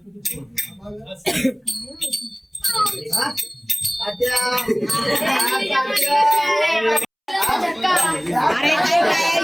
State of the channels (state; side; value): identical; both; correlation 1.00